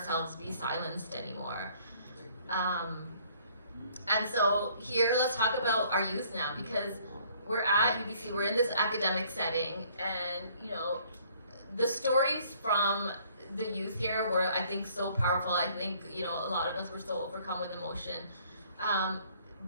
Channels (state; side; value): inverted; both; correlation -0.60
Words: be silenced anymore. And so here, let's talk about our youth now, because we're at UBC, we're in this academic setting, and the stories from the youth here were, I think, so powerful. I think, a lot of us were so overcome with emotion.